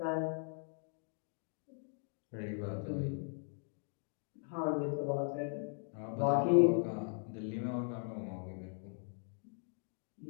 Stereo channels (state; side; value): silent; right; 52 dB below the other